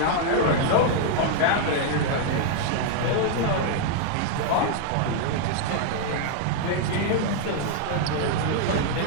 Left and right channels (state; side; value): different; both; correlation 0.00